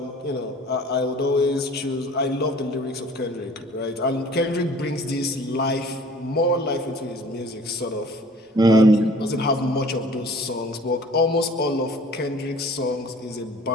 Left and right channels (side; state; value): both; normal; correlation 0.50